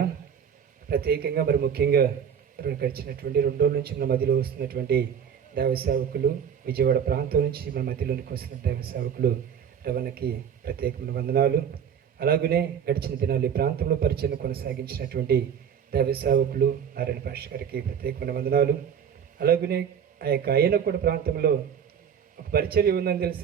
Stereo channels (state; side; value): quieter; left; 7.9 dB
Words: ప్రత్యేకంగా మరి ముఖ్యంగా గడిచినటువంటి 2 రోజుల నుంచి మన మధ్యలో వస్తున్నటువంటి దైవ సేవకులు, విజయవాడ ప్రాంతం నుంచి మన మధ్యలోనికి వస్తున్న దైవ సేవకులు రవణకి ప్రత్యేకమైన వందనాలు. అలాగనే గడిచిన దినాలు ఈ ప్రాంతంలో పరిచయం కొనసాగించినటువంటి దైవ సేవకులు నారాయణ పాస్టర్ గారికి ప్రత్యేకమైన వందనాలు. అలాగనే ఆ యొక్క అయ్యనకూడ ప్రాంతంలో ఒక పరిచర్య ఉందని తెలుసు,